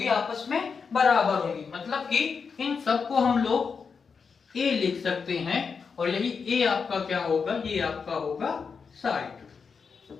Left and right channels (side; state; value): right; quieter; 5.6 dB